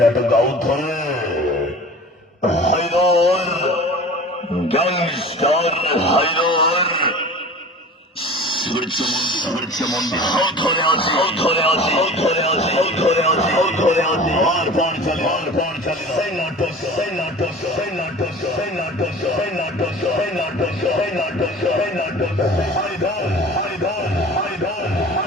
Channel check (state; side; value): normal; both; correlation 0.40